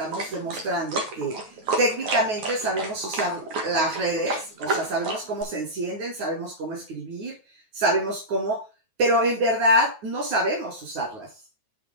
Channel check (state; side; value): late; left; 9.4 ms